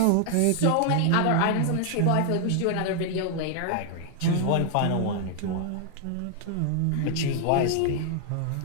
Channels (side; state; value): both; different; correlation 0.00